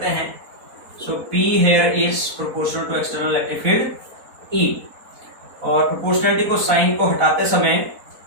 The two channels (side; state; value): left; late; 4.0 ms